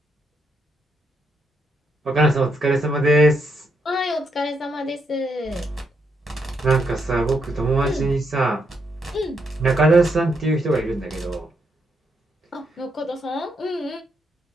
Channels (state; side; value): normal; both; correlation 0.79